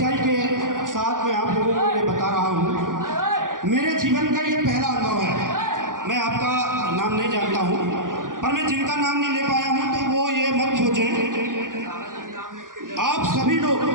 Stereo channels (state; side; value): late; left; 0.89 ms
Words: के साथ मैं आप लोगों को ये बता रहा हूं। मेरे जीवन का ये पहला अनुभव है। मैं आपका नाम नहीं जानता हूं, पर मैं जिनका नाम नहीं ले पाया हूं तो वो ये मत सोचें। आप सभी लोग